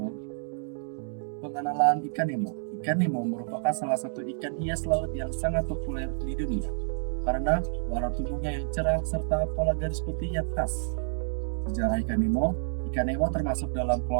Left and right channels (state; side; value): silent; left; digital silence